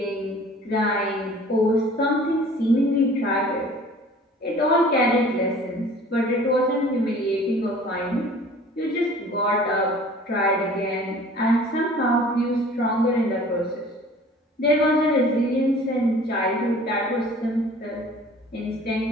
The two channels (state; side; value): normal; both; correlation 0.48